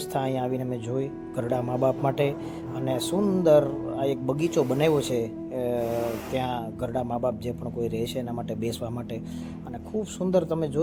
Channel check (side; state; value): both; identical; correlation 1.00